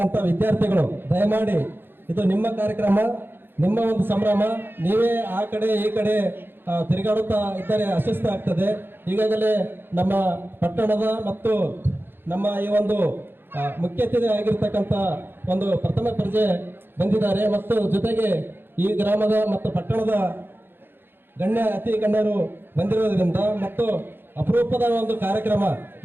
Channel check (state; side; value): late; left; 0.10 ms